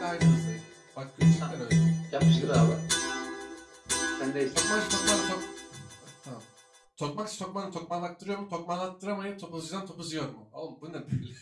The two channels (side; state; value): both; identical; correlation 1.00